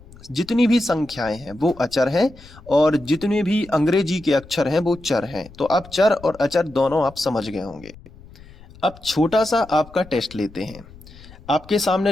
जितनी भी संख्याएं हैं वो अचर हैं, और जितने भी अंग्रेजी के अक्षर हैं वो चर हैं। तो अब चर और अचर दोनों आप समझ गए होंगे। अब छोटा सा आपका टेस्ट लेते हैं। आपके सामने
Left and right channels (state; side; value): noise; left; rumble, 21 dB below the sound